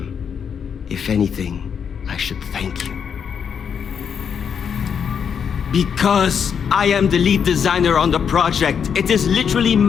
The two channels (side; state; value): right; quieter; 7.2 dB